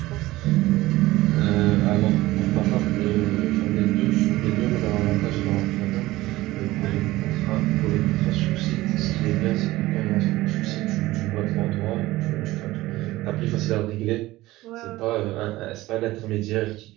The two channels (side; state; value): left; quieter; 17.9 dB